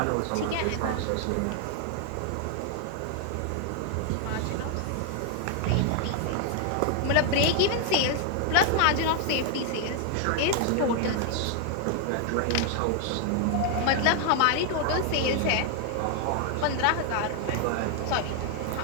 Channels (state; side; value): different; both; correlation 0.00